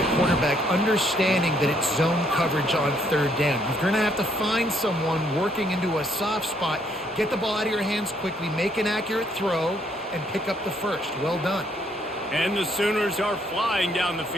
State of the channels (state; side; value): normal; both; correlation 0.69